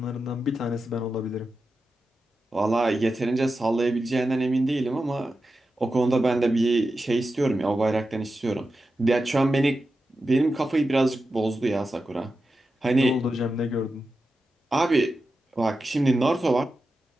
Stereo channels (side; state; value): both; normal; correlation 0.91